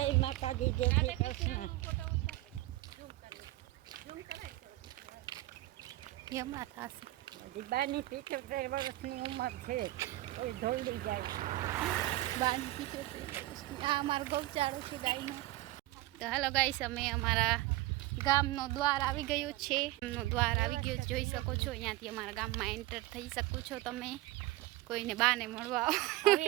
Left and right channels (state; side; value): quieter; left; 17.7 dB